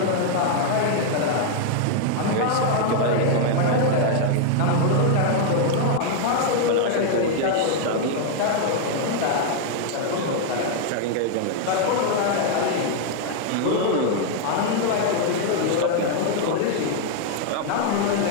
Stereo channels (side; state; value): both; different; correlation 0.00